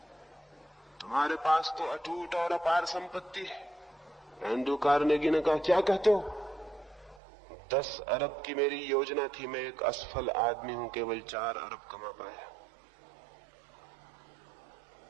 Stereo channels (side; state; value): left; drops out; at 7.2 s